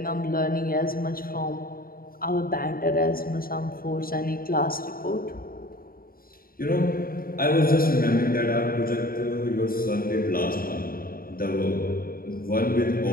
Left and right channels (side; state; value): right; late; 0.42 ms